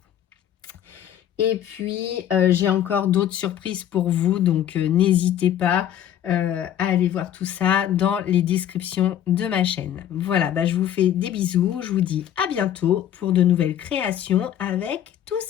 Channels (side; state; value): right; quieter; 10.7 dB